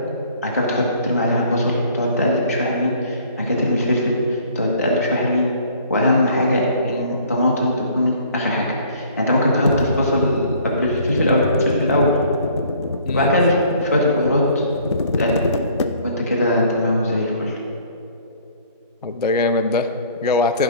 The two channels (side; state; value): both; inverted; correlation -0.55